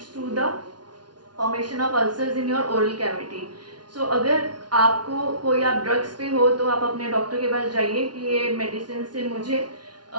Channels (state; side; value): late; left; 0.70 ms